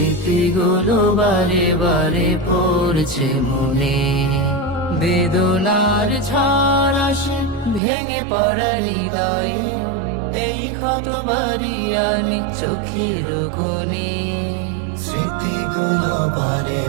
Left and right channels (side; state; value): left; drops out; at 7.8 s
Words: বারে বারে পড়ছে মনে, বেদনার ঝড় আসে ভেঙে পড়া হৃদয়ে, এই ক্ষত বাড়ি আনে চোখের কোণে। স্মৃতিগুলো বারে